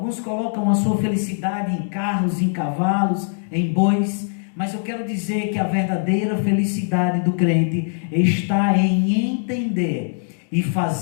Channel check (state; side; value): silent; right; digital silence